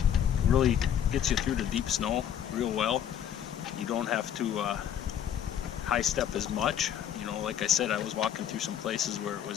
Really gets you through the deep snow real well. You don't have to high step as much. You know, like I said, I was walking through some places where it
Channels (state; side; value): quieter; right; 9.6 dB